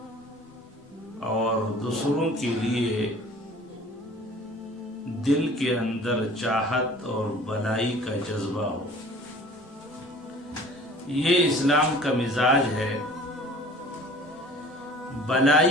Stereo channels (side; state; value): both; normal; correlation 0.47